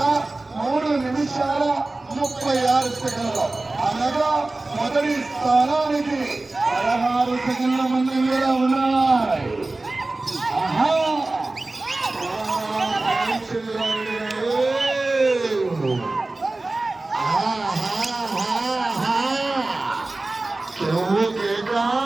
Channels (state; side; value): quieter; left; 3.0 dB